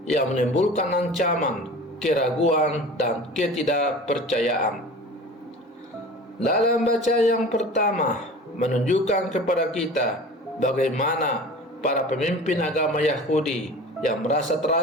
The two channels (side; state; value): both; normal; correlation 0.39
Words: yang menimbulkan ancaman, keraguan, dan ketidakpercayaan. Dalam bacaan yang pertama menunjukkan kepada kita bagaimana para pemimpin agama Yahudi yang merasa